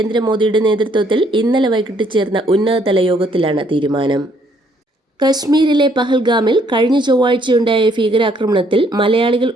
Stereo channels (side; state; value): both; normal; correlation 0.67